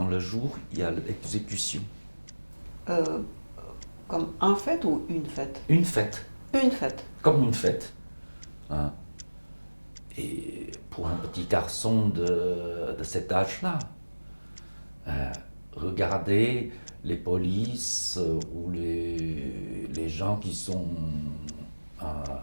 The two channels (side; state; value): both; inverted; correlation -1.00